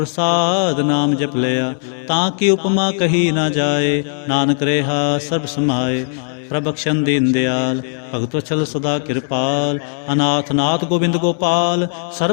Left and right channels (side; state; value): right; silent; 64 dB below the other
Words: नाम जप लिया, ताकि उपमा कही ना जाए। नानक रेहा सर्ब समाए, प्रभक्षण दीन दयाल। भगत वत्सल सदा कृपाल, अनाथ नाथ गोविंद गोपाल।